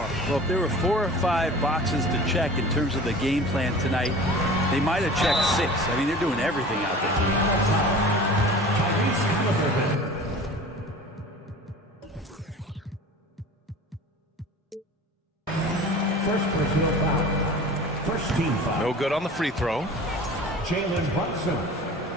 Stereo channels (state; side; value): normal; both; correlation 0.40